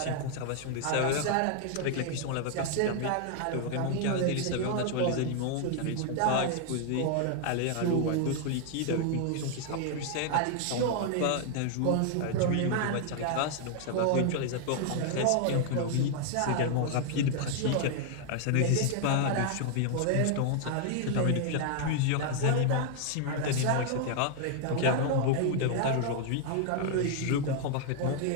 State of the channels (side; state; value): both; different; correlation 0.00